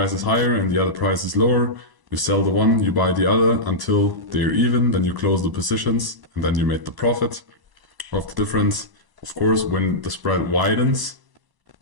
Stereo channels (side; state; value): left; late; 1.0 ms